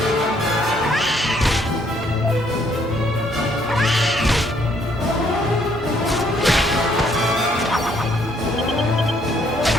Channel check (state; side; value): normal; both; correlation 0.67